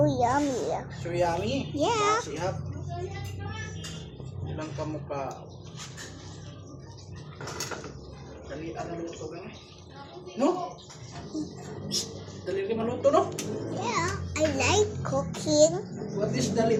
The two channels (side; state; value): both; identical; correlation 1.00